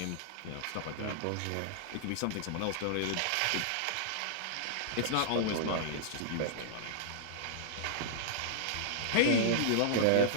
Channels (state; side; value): different; both; correlation -0.02